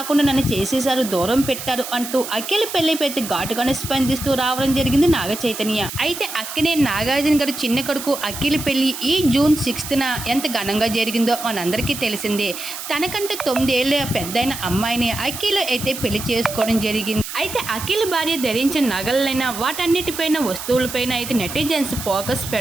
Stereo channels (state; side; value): noise; right; hiss, 9 dB below the sound